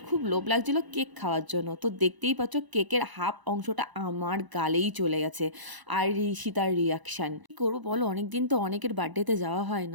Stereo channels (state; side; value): late; left; 1.0 ms